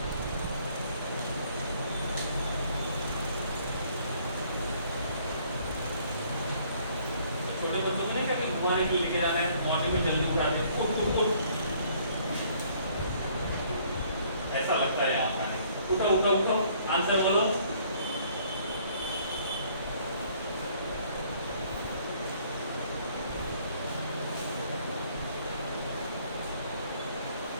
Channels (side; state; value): both; inverted; correlation -0.61